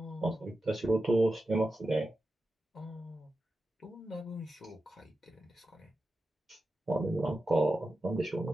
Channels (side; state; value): both; normal; correlation 0.91